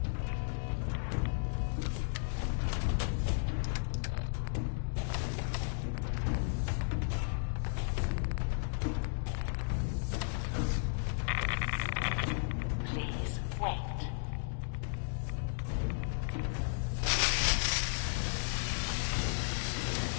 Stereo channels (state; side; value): silent; right; digital silence